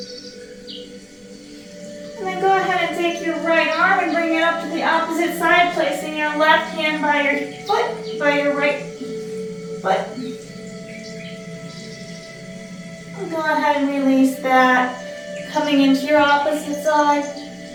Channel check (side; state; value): both; identical; correlation 1.00